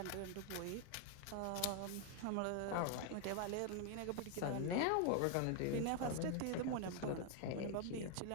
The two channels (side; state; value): both; different; correlation 0.00